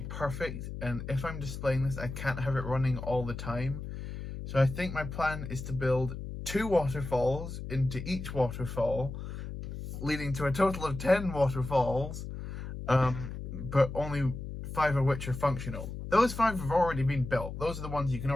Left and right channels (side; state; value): left; noise; hum, 8 dB below the sound